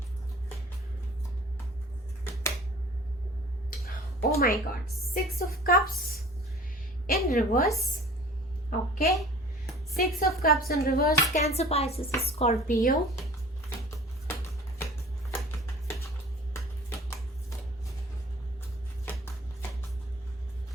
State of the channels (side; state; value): both; normal; correlation 0.46